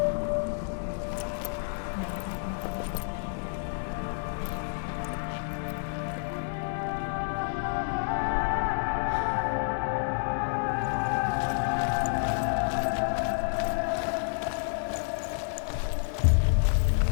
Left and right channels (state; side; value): silent; right; 56 dB below the other